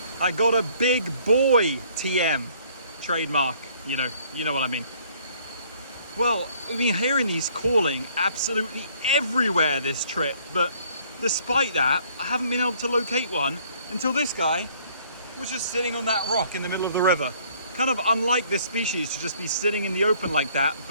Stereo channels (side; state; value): both; inverted; correlation -0.60